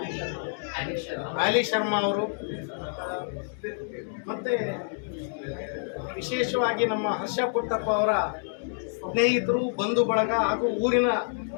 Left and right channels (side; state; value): right; silent; digital silence